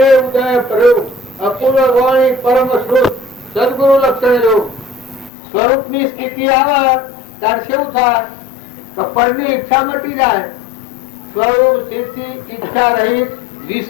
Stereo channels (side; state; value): right; drops out; at 5.3 s